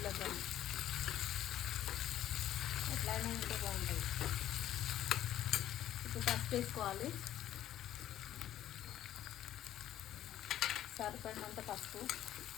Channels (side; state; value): right; quieter; 12.2 dB